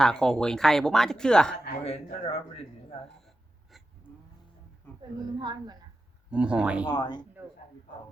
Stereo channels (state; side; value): normal; both; correlation 0.91